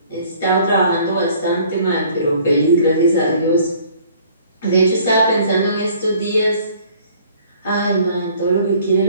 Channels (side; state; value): both; inverted; correlation -0.56